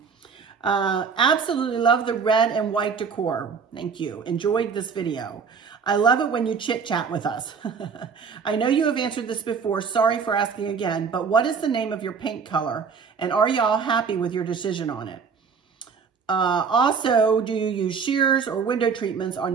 Absolutely love the red and white decor. Thank you. Enjoyed this video. I love it when you chit-chat with us. I know you have answered this before. Sorry for asking again, but what is the name of your paint color? And are y'all happy with your decision on it? Also, do you use shears or window treatments on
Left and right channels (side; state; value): left; quieter; 5.9 dB